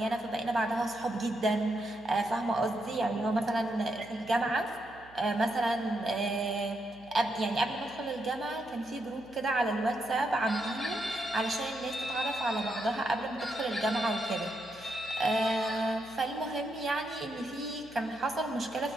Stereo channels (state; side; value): noise; right; hum, 24 dB below the sound